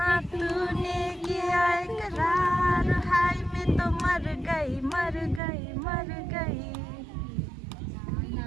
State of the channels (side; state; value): left; drops out; at 5.4 s